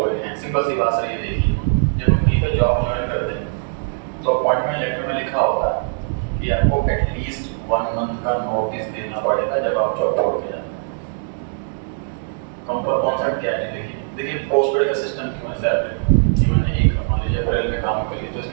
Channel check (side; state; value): left; silent; digital silence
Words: हैं, सिंपल सी बात सही देखिए, जब हम कहीं पर जॉब ज्वाइन करते हैं तो अपॉइंटमेंट लेटर में लिखा होता है कि आपको एटलीस्ट 1 मंथ का नोटिस देना पड़ेगा जब आप जॉब छोड़ के जाए। कंपनी कॉन्सेप्ट क्या है देखिए पोस्टपेड का सिस्टम क्यों है सैलरी कि मैंने एक मान लीजिए अप्रैल में काम करी तो